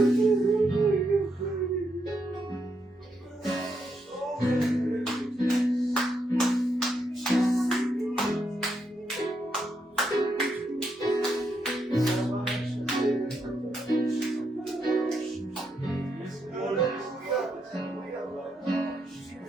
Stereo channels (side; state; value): both; normal; correlation 0.79